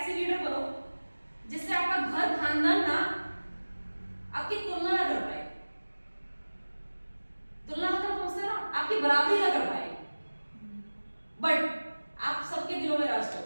लीडर बनो जिससे आपका घर खानदान ना आपकी तुलना ना कर पाए। तुलना मतलब समझते ना, आपकी बराबरी ना कर पाए, बट आप सबके दिलों में राज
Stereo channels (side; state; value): both; inverted; correlation -1.00